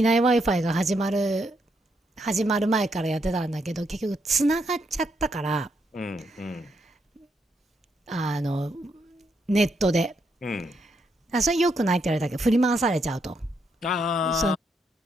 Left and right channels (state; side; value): normal; both; correlation 0.78